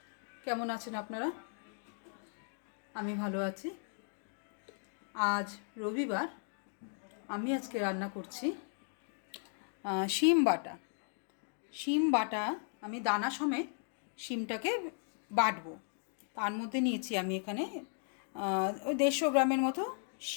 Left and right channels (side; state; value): right; silent; 53 dB below the other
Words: কেমন আছেন আপনারা? আমি ভালো আছি। আজ রবিবার। আমি আজকে রান্না করছি শিম বাটা। শিম বাটা আমি দানা সমেত শিমটাকে বাটবো। তার মধ্যে নিয়েছি আমি এখানে ওই 150 গ্রামের মতো